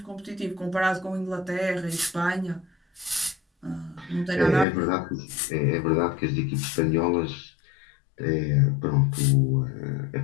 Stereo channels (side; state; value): right; drops out; at 4.7 s